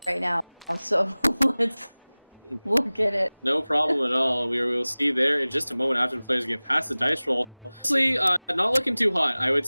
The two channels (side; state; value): both; inverted; correlation -1.00